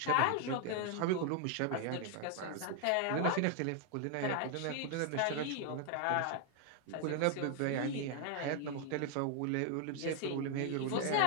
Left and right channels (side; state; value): both; different; correlation 0.00